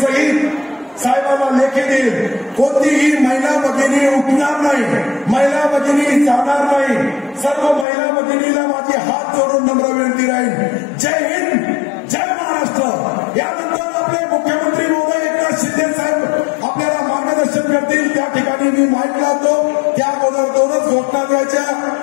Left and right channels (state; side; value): drops out; right; at 7.9 s